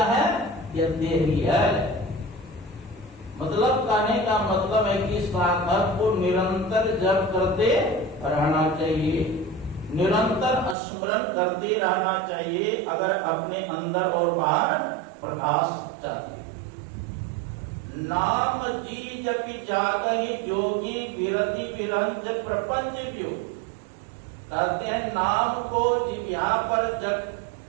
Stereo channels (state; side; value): drops out; left; at 10.8 s